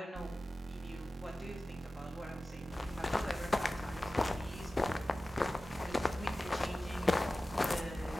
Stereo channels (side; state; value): both; normal; correlation 0.95